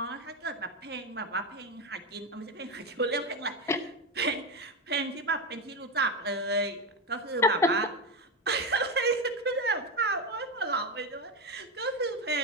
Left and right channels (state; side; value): normal; both; correlation 0.13